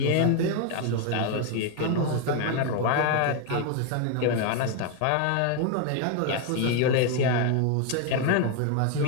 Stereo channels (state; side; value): different; both; correlation 0.01